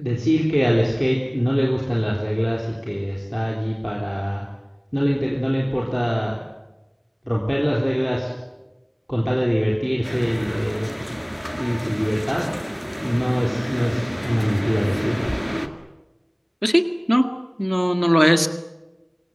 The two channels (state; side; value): identical; both; correlation 1.00